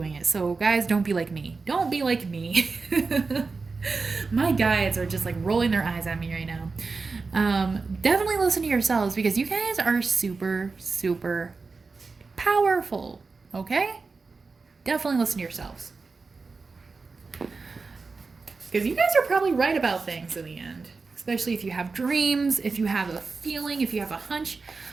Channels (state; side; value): quieter; left; 4.3 dB